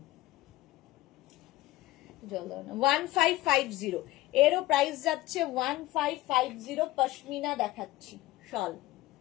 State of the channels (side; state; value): right; quieter; 17.4 dB